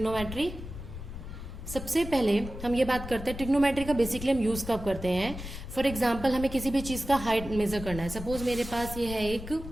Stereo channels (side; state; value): left; noise; rumble, 10 dB below the sound